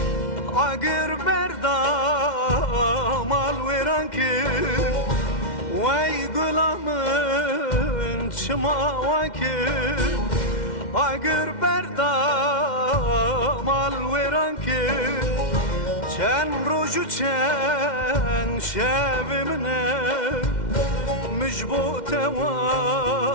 Agir berdam al veran kir Vay gulamın çima vakir Agir berdam al veran kir Çen roju çen şevimne مجبوط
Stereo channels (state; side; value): late; right; 2.1 ms